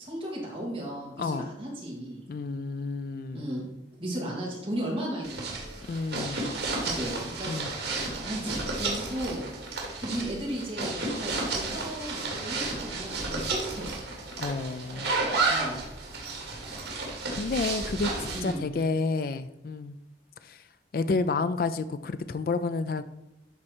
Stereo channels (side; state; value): both; normal; correlation 0.36